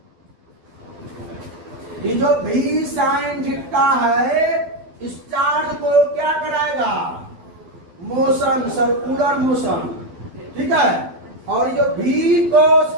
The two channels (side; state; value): left; late; 12 ms